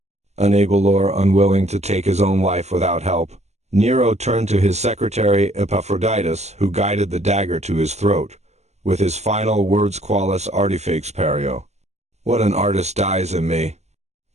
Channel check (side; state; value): left; late; 0.33 ms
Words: Unable or unwilling to take his own life without help, Nero turned to his secretary Epaphroditus, who guided the dagger to his throat, with his final words: qualis artifex perio. What an artist dies in me.